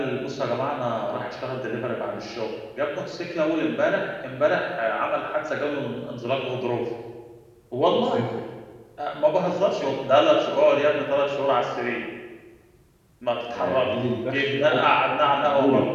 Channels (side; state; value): both; identical; correlation 1.00